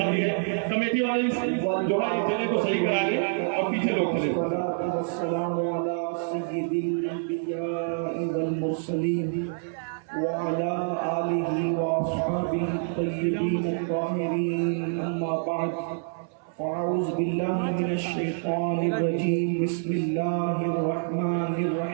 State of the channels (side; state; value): left; silent; 58 dB below the other